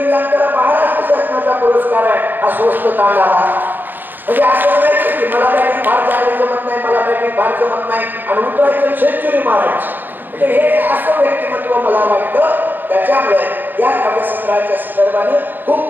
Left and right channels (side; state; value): left; late; 0.090 ms